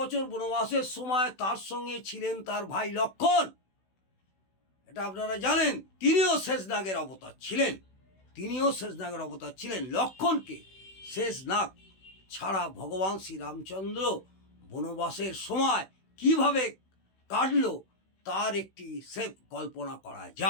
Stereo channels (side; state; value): right; late; 16 ms